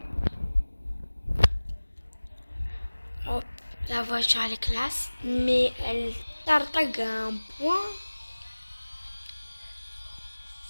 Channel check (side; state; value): both; inverted; correlation -1.00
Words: Hop, la voiture elle est classe, mais elle tartague un point.